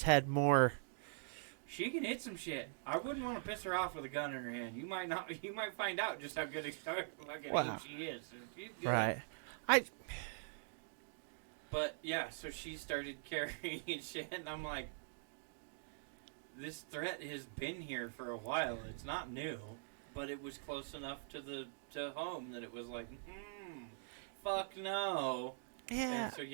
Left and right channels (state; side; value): silent; left; digital silence